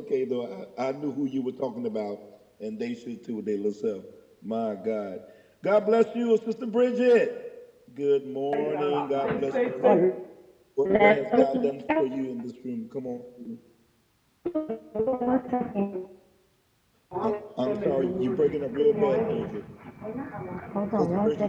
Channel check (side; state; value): both; identical; correlation 1.00